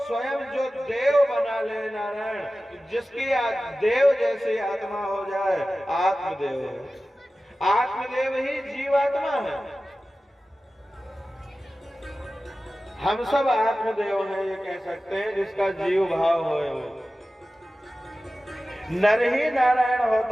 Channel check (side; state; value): both; normal; correlation 0.95